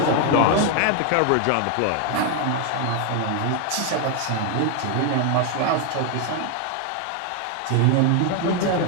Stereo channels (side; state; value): both; different; correlation 0.01